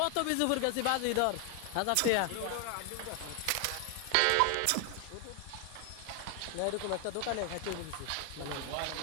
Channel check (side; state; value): both; different; correlation 0.00